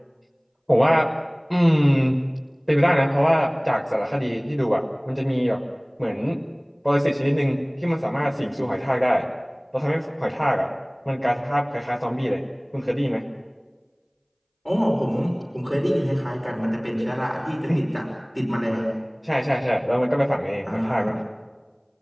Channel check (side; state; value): both; identical; correlation 1.00